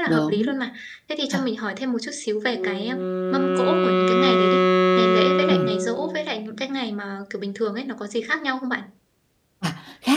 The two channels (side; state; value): both; identical; correlation 1.00